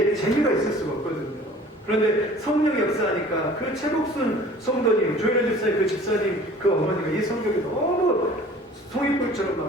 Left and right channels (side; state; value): both; normal; correlation 0.47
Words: 재미가 있을 수가 없거든요. 그런데 성령이 역사하니까 그 최복순 성도님, 조혜련 집사님, 그 집사님, 그 어머니가 이 성경이 너무 송이불처럼